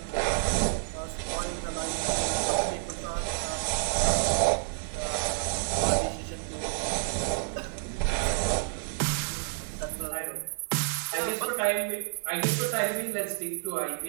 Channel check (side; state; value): left; silent; 58 dB below the other